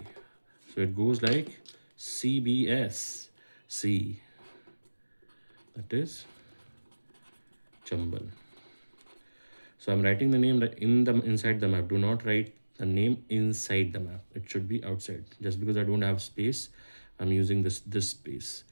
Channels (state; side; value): inverted; both; correlation -1.00